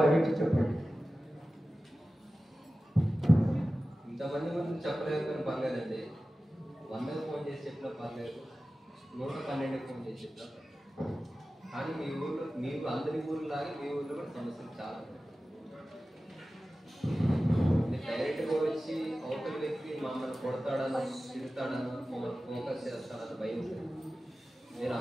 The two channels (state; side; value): normal; both; correlation 0.95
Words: చెప్పండి. ఇంతమంది ముందు చెప్పలేదు కానీ పర్లేదండి. 100 ఫోన్ చేసి చెప్పినా పర్లేదు, 112 ఫోన్ చేసి చెప్పినా పర్లేదు. కానీ మీ ఊళ్ళో మీకు అందరి ఊళ్ళలాగే మీ ఊళ్ళో కూడా సమస్యలు చాలా ఉన్నాయి. డైరెక్ట్గా వచ్చి అవతల వ్యక్తి మమ్మల్ని కొడతాడనో తిడతాడనో మమ్మల్ని ఫోకస్ చేస్తాడని భయం ఉంటుంది. మీరు